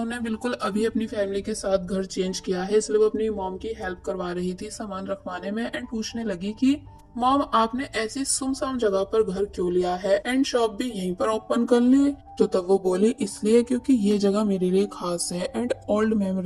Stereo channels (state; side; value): identical; both; correlation 1.00